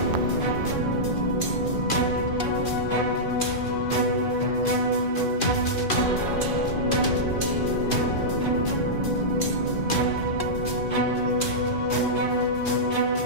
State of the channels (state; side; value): late; right; 2.5 ms